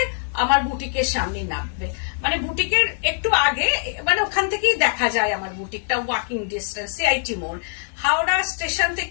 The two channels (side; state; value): right; silent; 64 dB below the other